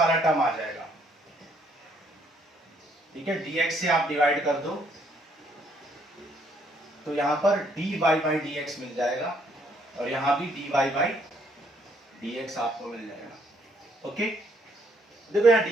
टर्म आ जाएगा। ठीक है, dx से आप डिवाइड कर दो तो यहां पर dy बाई dx मिल जाएगा और यहां भी dy बाई dx आपको मिल जाएगा। ओके, देखो यहाँ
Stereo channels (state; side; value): normal; both; correlation 0.68